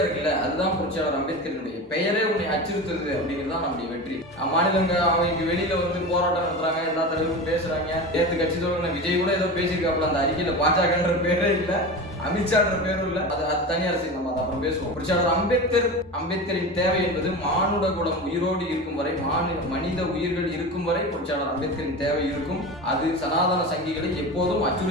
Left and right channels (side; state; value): both; normal; correlation 0.28